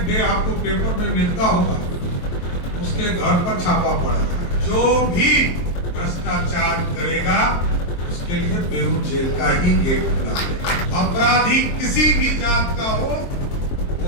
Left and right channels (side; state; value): right; late; 23 ms